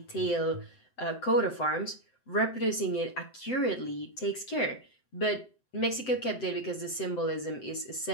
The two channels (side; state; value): right; late; 7.8 ms